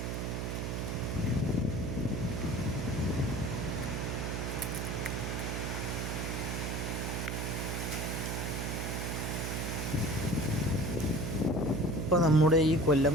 ഇപ്പോൾ നമ്മുടെ ഈ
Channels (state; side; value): noise; right; hum, 2 dB below the sound